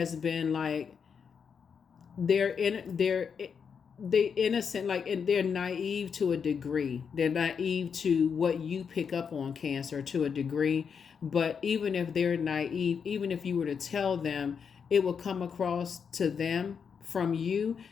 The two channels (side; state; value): right; quieter; 6.6 dB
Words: been like, they're innocent, like, and they're naive to a degree. They're naive to what you pick up on, Cancer, to a degree. But even if they're naive, even if you were to tell them, it will come across to them from you